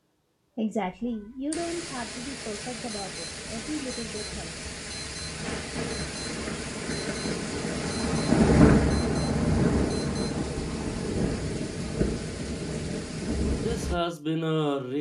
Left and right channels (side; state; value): both; identical; correlation 1.00